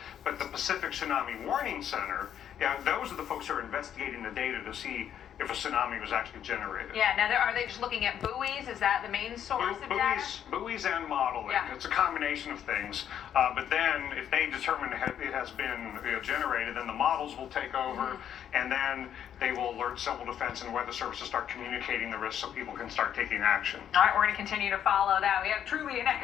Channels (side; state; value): right; quieter; 9.6 dB